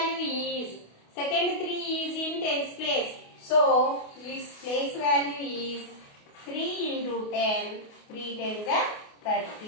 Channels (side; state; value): right; late; 28 ms